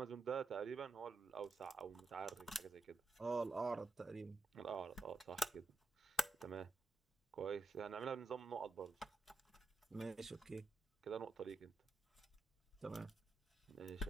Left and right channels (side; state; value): left; quieter; 3.6 dB